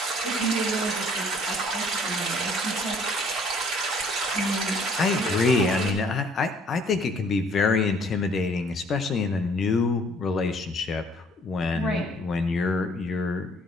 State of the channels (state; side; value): normal; both; correlation 0.59